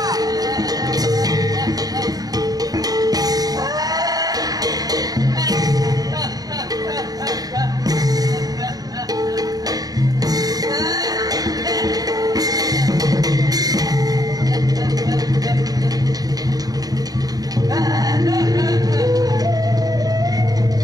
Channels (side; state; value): left; late; 0.18 ms